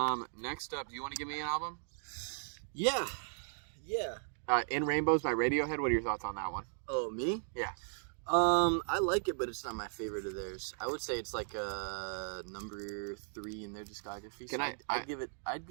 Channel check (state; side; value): silent; left; digital silence